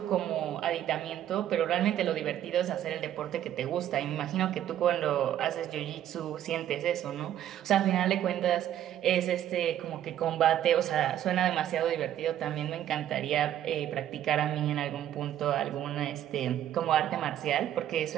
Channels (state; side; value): quieter; left; 11.4 dB